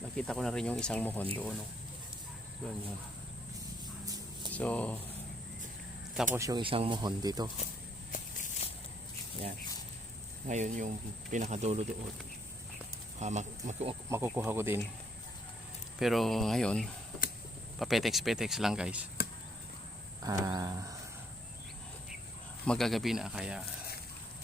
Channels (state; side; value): normal; both; correlation 0.69